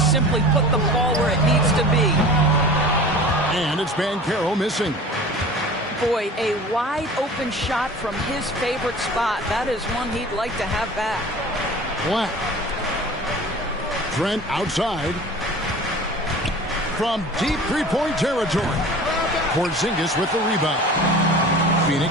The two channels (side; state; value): both; normal; correlation 0.40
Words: simply put the ball where it needs to be. And it's Banchero missing. Boy, a wide open shot from his favorite spot. That is one he'd like to have back. Black. Trent outside. From deep three-point territory. Porzingis with the rebound.